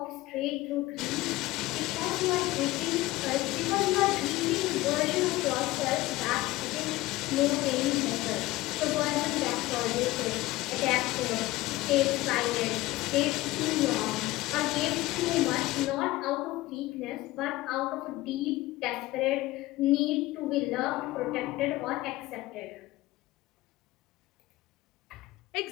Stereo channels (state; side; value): quieter; right; 18.4 dB